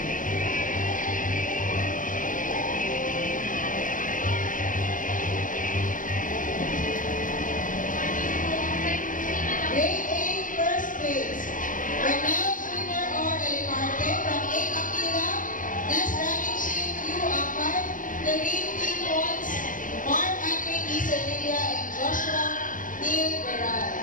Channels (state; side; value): late; right; 0.38 ms